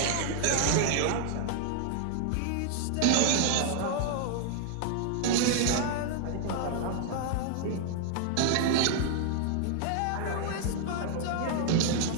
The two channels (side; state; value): both; different; correlation -0.01